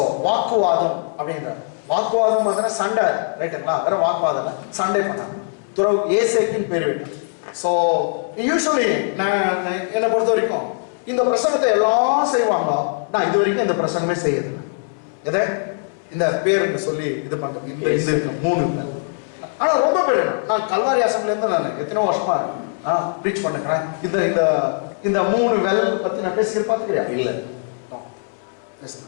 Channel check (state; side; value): silent; right; 65 dB below the other